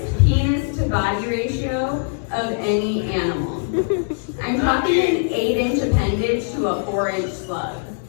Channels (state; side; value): silent; right; digital silence